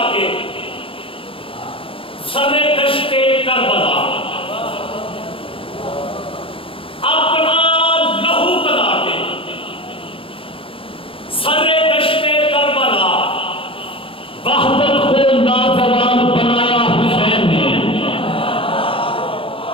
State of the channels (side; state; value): right; late; 0.26 ms